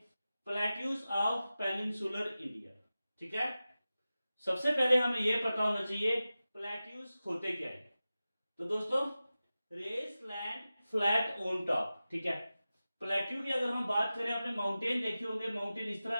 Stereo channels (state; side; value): inverted; both; correlation -0.95